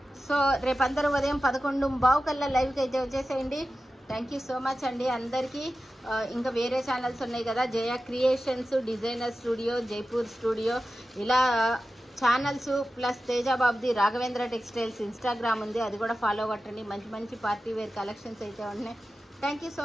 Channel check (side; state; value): both; normal; correlation 0.94